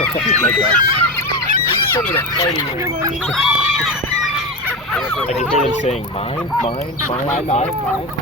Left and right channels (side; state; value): both; normal; correlation 0.19